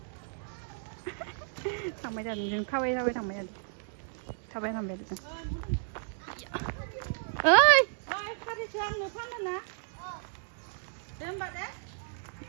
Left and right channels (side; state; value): left; silent; digital silence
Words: 장마자 좀 카와이 사와이 장마자 사바이 삼배 좀 어이 카리 저항 너 파면나? 뱀바데?